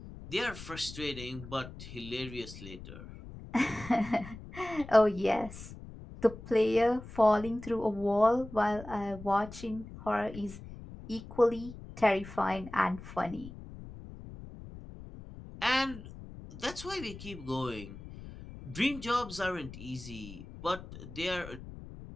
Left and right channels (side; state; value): left; noise; rumble, 14 dB below the sound